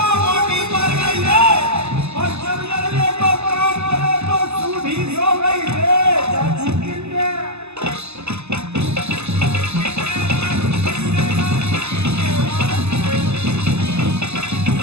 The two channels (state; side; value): late; left; 0.81 ms